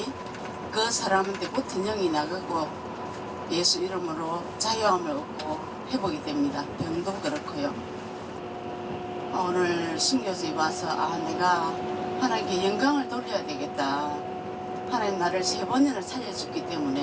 그 사람한테 붙은 영이 나가고 예수 이름으로 자유함을 얻고 회복이 됩니다. 병도 그렇고요. 오늘 순교지에 와서 내가 하나님께 영광을 돌려야 되겠다. 하나님 나를 3번이나 살려줬기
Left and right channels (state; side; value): identical; both; correlation 1.00